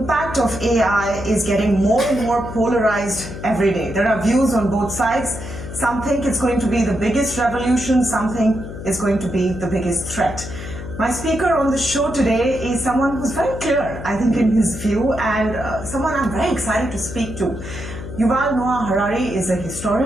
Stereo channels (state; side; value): noise; left; hum, 10 dB below the sound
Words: of AI is getting more and more polarized every day. There are views on both sides. Some think it's going to be the biggest revolution, some think it's going to be the biggest threat. My speaker on the show today is someone who's very clear, I think, in his view, and someone I'm very excited to speak to. Yuval Noah Harari is a